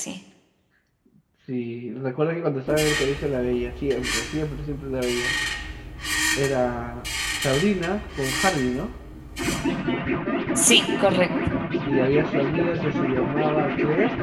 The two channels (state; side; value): identical; both; correlation 1.00